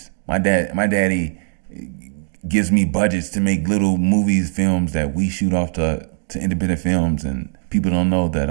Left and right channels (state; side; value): silent; left; digital silence